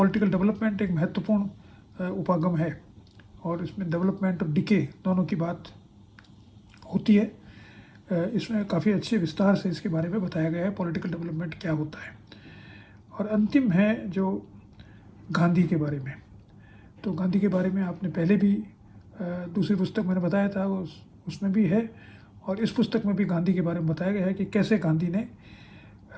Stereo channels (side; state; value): both; identical; correlation 1.00